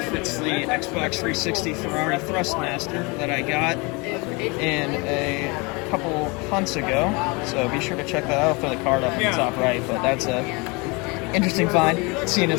it's the Xbox 360 Ferrari Thrustmaster that I got in a couple months ago. So be sure to check that out. I'll throw the card up in the top right, but that's a Interesting find, seeing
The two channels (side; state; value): right; quieter; 28.1 dB